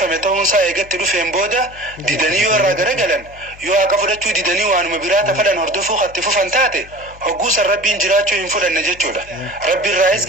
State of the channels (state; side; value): noise; left; hum, 21 dB below the sound